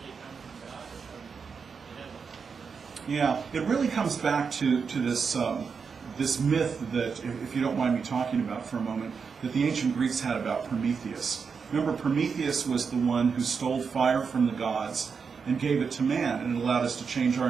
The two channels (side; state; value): left; quieter; 5.7 dB